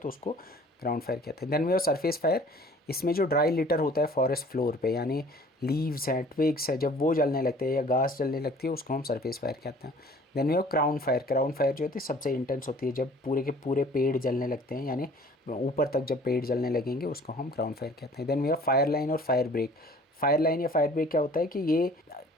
उसको ग्राउंड फायर कहते हैं। Then we have surface fire. इसमें जो ड्राई लिटर होता है फॉरेस्ट फ्लोर पे, यानी लीव्स हैं, ट्विग्स है, जब वो जलने लगते हैं या घास जलने लगती है उसको हम सरफेस फायर कहते हैं। Then we have crown fire. Crown fire जो होती है सबसे इंटेंस होती है, जब पूरे के पूरे पेड़ जलने लगते हैं, यानी ऊपर तक जब पेड़ जलने लगेंगे उसको हम क्राउन फायर कहते हैं। Then we have fire line और फायर ब्रेक। फायर लाइन या फायर ब्रेक क्या होता है कि ये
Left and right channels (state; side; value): normal; both; correlation 0.51